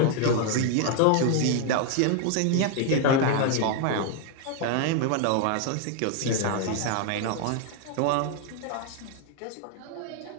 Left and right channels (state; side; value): different; both; correlation 0.01